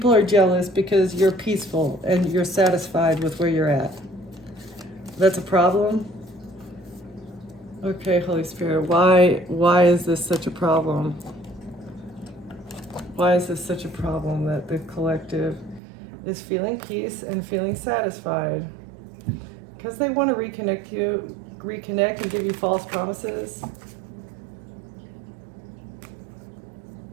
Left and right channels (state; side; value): drops out; left; at 15.8 s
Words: are jealous because you're peaceful and you're satisfied with where you're at? That's a problem? Okay, Holy Spirit, why is this such a problem? Why is this such a problem that the collective is feeling peace and feeling satisfied? Because they want to reconnect and give you false promises.